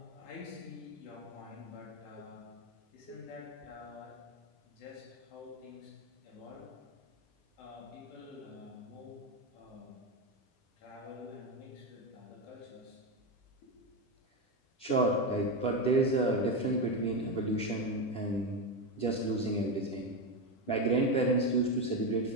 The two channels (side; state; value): right; late; 10 ms